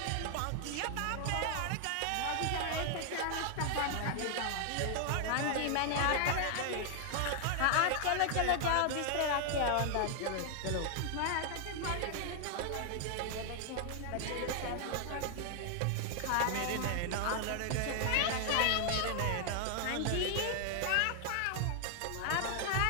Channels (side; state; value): both; different; correlation 0.00